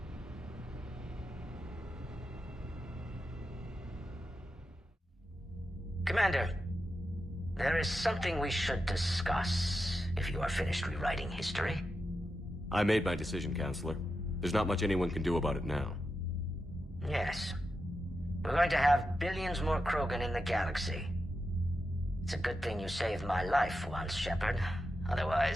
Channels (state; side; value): normal; both; correlation 0.89